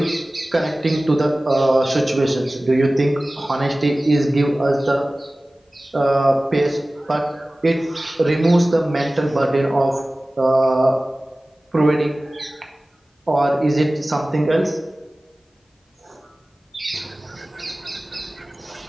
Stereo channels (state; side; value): normal; both; correlation 0.97